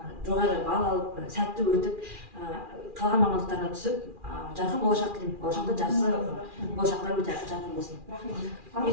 жоғары балл алып, сәтті өтіп, қалған мамандықтарына түсіп, жарқын болашақ тілеймін. Болашақта жақсы болашақтар өте жарқын болсын.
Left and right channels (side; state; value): left; late; 2.4 ms